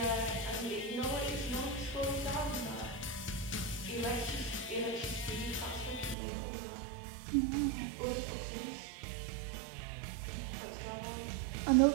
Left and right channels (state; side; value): drops out; left; at 6.2 s